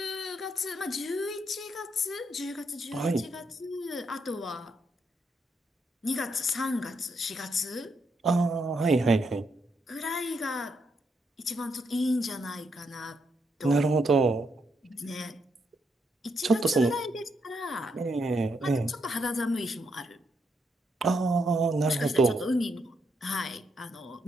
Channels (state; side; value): normal; both; correlation 0.78